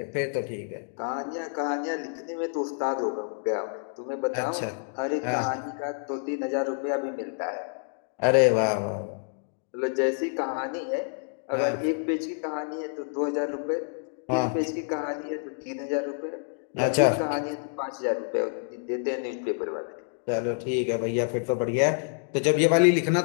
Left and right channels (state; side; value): silent; right; digital silence